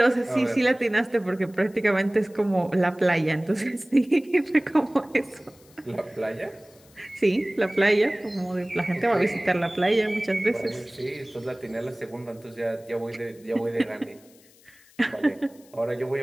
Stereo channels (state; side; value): noise; left; hiss, 28 dB below the sound